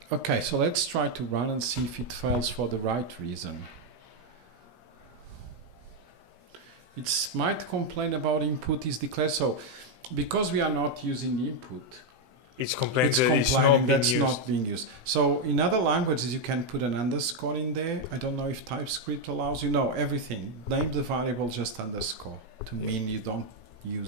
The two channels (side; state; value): left; late; 17 ms